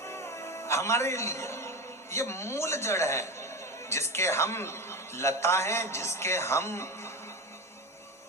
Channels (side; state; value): both; normal; correlation 0.22